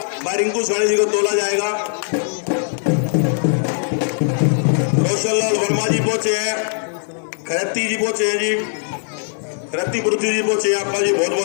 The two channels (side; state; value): right; silent; digital silence